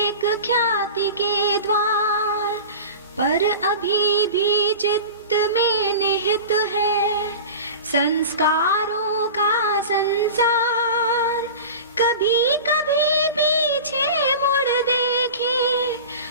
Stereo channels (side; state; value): both; inverted; correlation -0.34